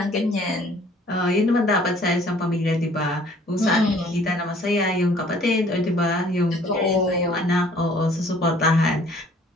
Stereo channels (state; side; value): normal; both; correlation 0.56